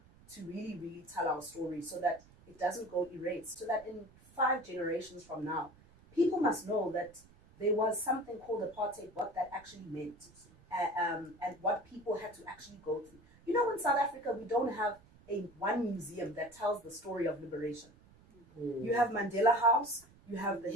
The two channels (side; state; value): right; noise; rumble, 25 dB below the sound